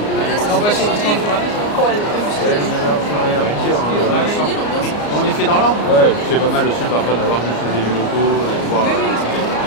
On les fait dans l'ordre? Ouais, c'est pas mal aussi parfois d'avoir juste les élus locaux, de voir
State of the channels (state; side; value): late; right; 34 ms